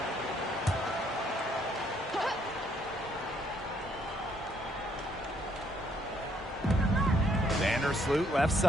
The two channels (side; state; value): both; normal; correlation 0.68